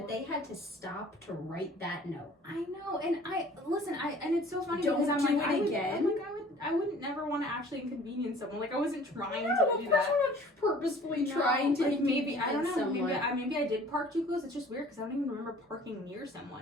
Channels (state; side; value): normal; both; correlation 0.50